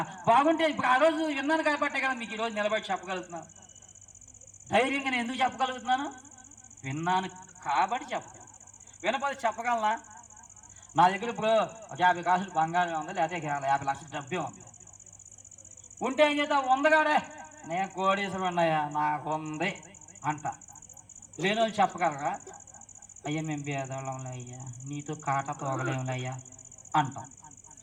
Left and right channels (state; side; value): identical; both; correlation 1.00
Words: బాగుంటే ఇప్పుడు ఆ రోజు విన్నాను కాబట్టే కదా మీకు ఈరోజు నిలబడి చెప్పగలుగుతున్నాను. ధైర్యంగా నేను ఎందుకు చెప్పగలుగుతున్నాను? విన్నాను కాబట్టి చెప్పగలను. వినపోతే చెప్పగలనా? నా దగ్గర ఇప్పుడు 50 కాసులు బంగారం ఉంది, లేకపోతే 50 లక్షల డబ్బే ఉంది. ఉంటే ఏం చేద్దాం, ఉందగాడే నేను కోడీశ్వరు ఉన్నాయా, నాకు ఉంది అంట. లేని వాళ్ళు చెప్పగలరా, అయ్యా మేము పేదవాళ్ళంలే అయ్యా, నీతో కాట తోగలేములే అయ్యా అంటాం.